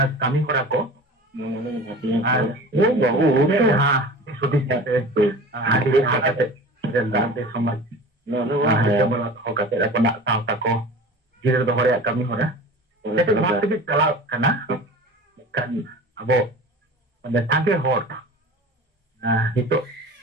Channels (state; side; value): normal; both; correlation 0.38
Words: kami hora ko আর হ্যাঁ সুদীপ সাথে আদি হাতে রেলদাতে সমাজ হো কাতে আপনা সাউতা ko জিরে দহ ᱨᱮᱭᱟᱜ kami hora ᱡᱮᱛᱮ ᱵᱷᱟᱜ ᱛᱮᱜᱮ ᱪᱟᱞᱟᱣ ᱠᱟᱱᱟ kan abo ᱢᱟᱱᱮ ᱥᱟᱸᱜᱮ ᱦᱚᱲ ᱱᱤᱛᱚᱜ